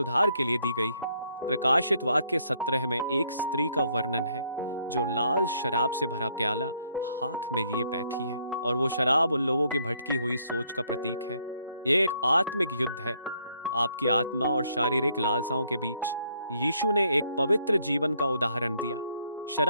के लिए दी गई है। प्रकाशित वाक्य 17 में एक स्त्री का वर्णन है जो लाल शराब से भरा प्याला हाथ में लिए बैठी है, और वो शराब उन लोगों की भटकी हुई सोच का प्रतीक है। ये एक आत्मिक युद्ध है, आपकी आत्मा और शारीरिक लालसाओं के बीच। यीशु ने एक पवित्र जीवन का उदाहरण दिया।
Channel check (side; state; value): both; inverted; correlation -0.70